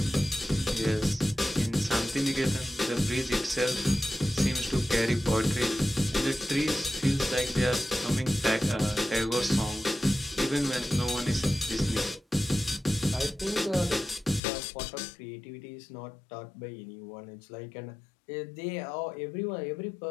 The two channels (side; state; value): right; drops out; at 14.4 s